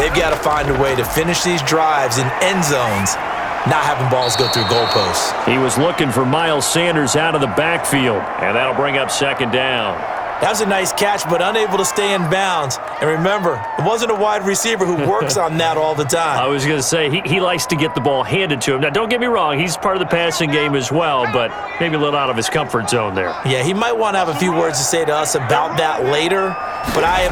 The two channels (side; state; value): both; identical; correlation 1.00